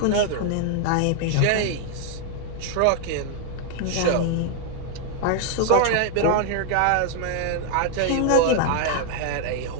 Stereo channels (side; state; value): both; different; correlation 0.00